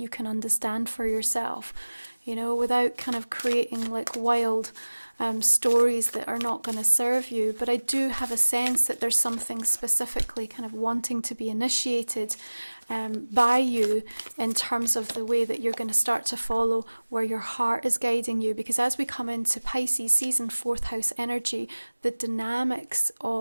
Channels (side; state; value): both; inverted; correlation -1.00